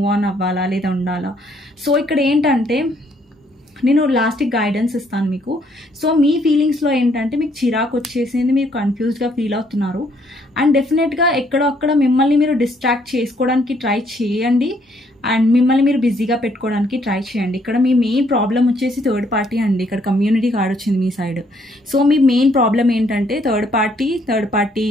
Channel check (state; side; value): normal; both; correlation 0.68